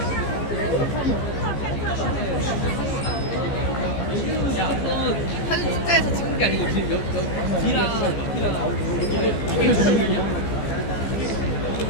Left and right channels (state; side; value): late; right; 15 ms